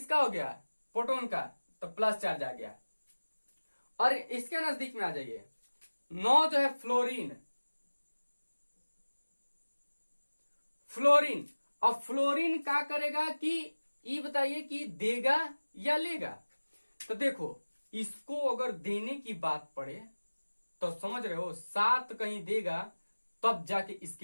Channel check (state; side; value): inverted; both; correlation -1.00